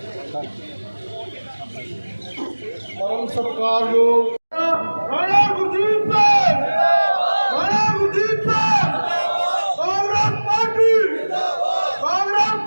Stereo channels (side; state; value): both; inverted; correlation -1.00